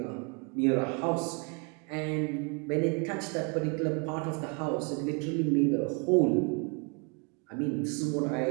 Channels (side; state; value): left; quieter; 35.1 dB